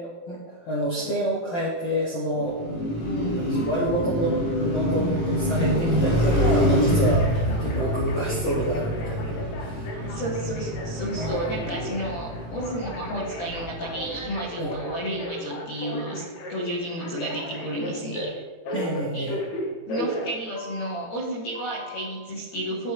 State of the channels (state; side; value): late; right; 18 ms